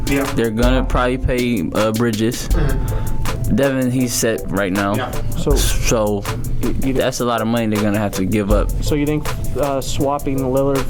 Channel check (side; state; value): both; identical; correlation 1.00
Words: Yeah. They're gonna probably pay Bridges. Devin, he's set right now. Yeah. So that's a lot of money they're gonna have to give up. So you think swapping Lillard